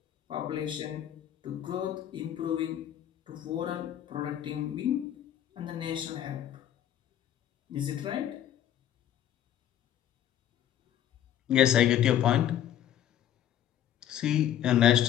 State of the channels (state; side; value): quieter; right; 11.1 dB